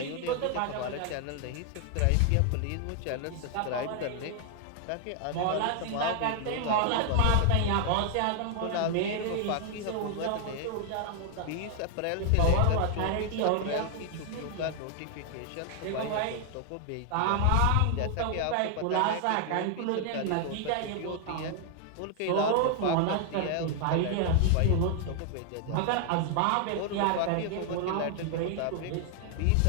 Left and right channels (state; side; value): different; both; correlation 0.00